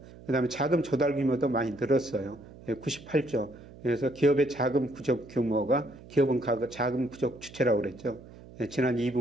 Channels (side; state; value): right; noise; hum, 19 dB below the sound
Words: 그 다음에 자금 조달 규모도 많이 늘었어요. 98조. 그래서 기업의 자금 부족 규모가 기업은 자금 부족 주체라고 그랬죠. 지난